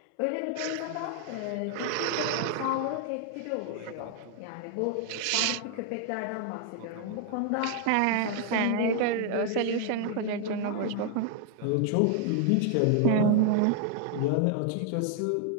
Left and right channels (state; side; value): different; both; correlation 0.00